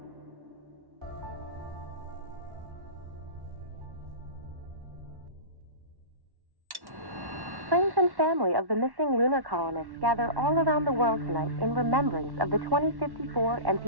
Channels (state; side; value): late; left; 1.1 ms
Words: Friends and family of the missing lunar colonists gather all around the world tonight in remembrance of the 2054